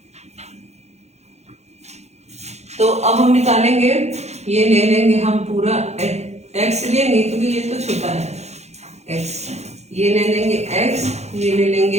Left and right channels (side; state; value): left; late; 0.32 ms